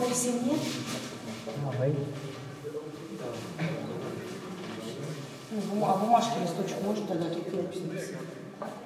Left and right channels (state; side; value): identical; both; correlation 1.00